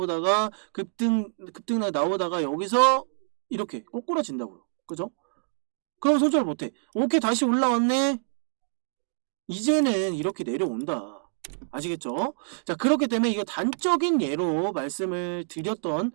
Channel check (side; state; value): left; silent; digital silence